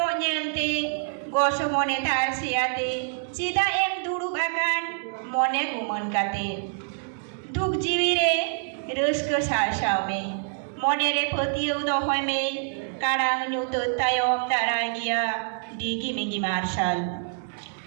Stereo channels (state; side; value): silent; left; digital silence